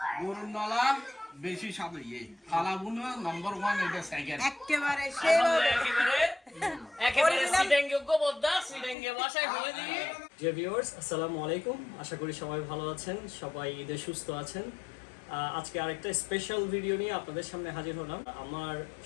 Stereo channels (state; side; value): drops out; right; at 9.0 s